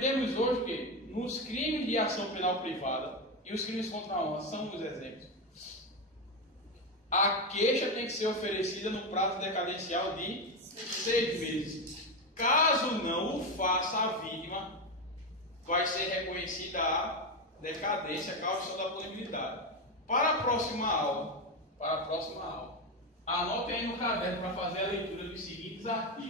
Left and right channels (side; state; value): both; normal; correlation 0.12